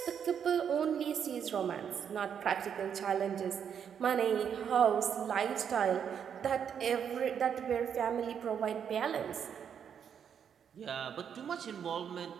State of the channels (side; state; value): left; quieter; 7.9 dB